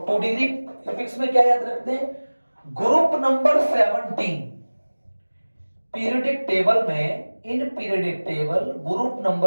2 डिग्री प्रीफिक्स में क्या याद रखते हैं? ग्रुप नंबर 17 पीरियोडिक टेबल में, in periodic table group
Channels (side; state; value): both; inverted; correlation -1.00